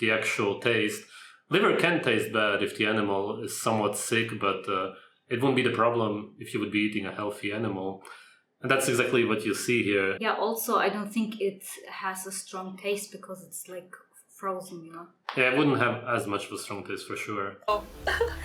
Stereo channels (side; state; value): both; identical; correlation 1.00